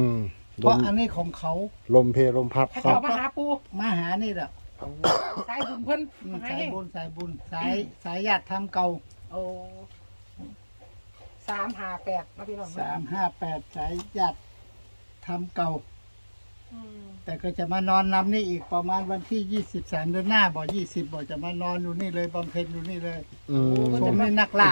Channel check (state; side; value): inverted; both; correlation -1.00